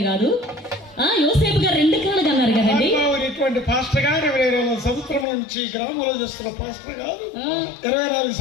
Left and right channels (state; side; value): drops out; right; at 5.2 s